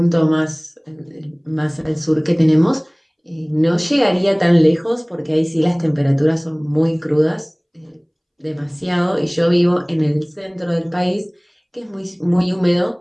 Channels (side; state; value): both; identical; correlation 1.00